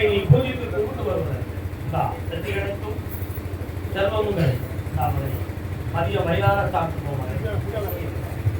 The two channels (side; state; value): both; identical; correlation 1.00